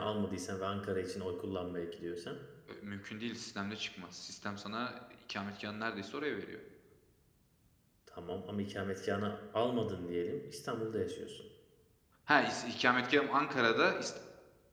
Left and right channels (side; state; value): both; identical; correlation 1.00